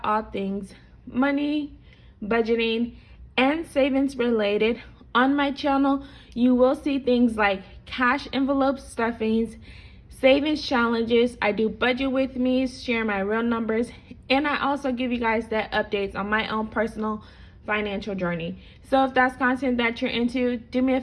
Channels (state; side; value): identical; both; correlation 1.00